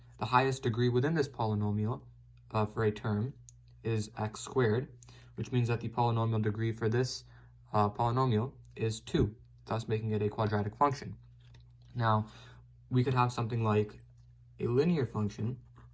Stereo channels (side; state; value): both; identical; correlation 1.00